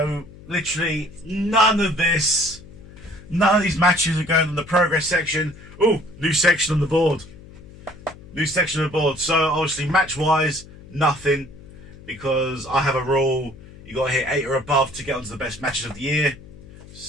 literally none of these matches are going on the progress section. Oh, new section on the board. So obviously match wise, nothing, because I have a rule: you got to hit 8 or above to get onto the best matches of the year.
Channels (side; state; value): left; noise; hum, 19 dB below the sound